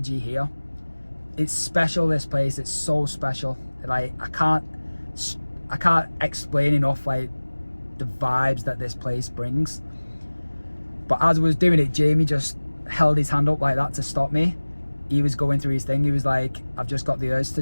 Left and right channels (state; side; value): inverted; both; correlation -1.00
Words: here. It's special, this place. It's so special. Like, I can't explain enough like the vibes that this place brings. But as I was doing it, Jamie just held his hand up like that to stop me. He was going through his thing. He was like, I've just got the urge